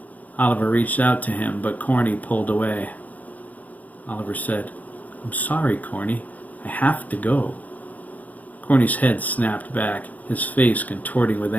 Oliver reached out to him, but Corny pulled away. Oliver said, I'm sorry, Corny. I have to go. Corny's head snapped back, his face contorting with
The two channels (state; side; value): late; right; 0.077 ms